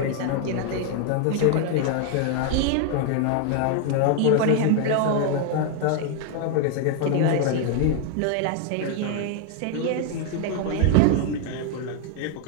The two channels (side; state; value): both; different; correlation 0.00